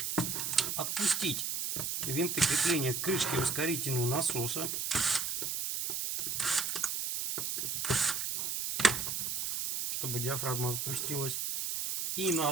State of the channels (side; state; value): right; noise; hiss, 1 dB below the sound